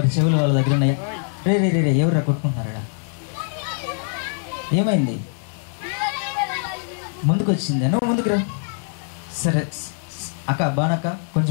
చెవులు వాళ్ళ దగ్గర ఉన్నాయా? రే రే రే ఎవరు కొట్టుకుంటున్నారా? ఏమైంది? ముందుకు వచ్చిందా? నువ్వు ముందుకు రా. సరే అక్క, బానక్క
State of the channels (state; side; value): silent; right; 62 dB below the other